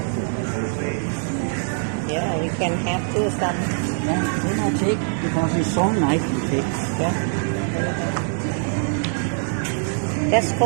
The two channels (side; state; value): left; silent; 64 dB below the other